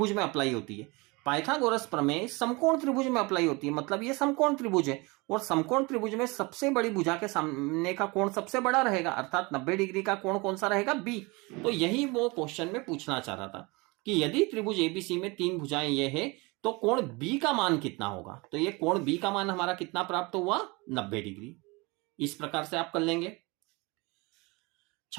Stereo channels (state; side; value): quieter; left; 25.9 dB